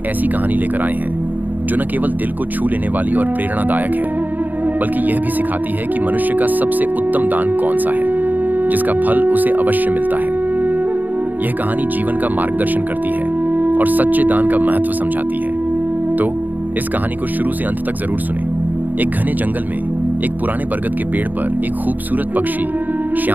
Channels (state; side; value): late; left; 0.085 ms